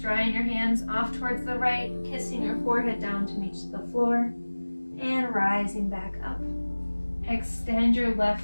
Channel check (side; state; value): both; inverted; correlation -1.00